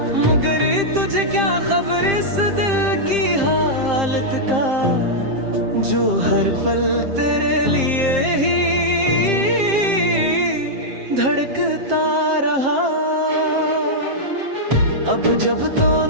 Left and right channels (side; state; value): left; late; 7.6 ms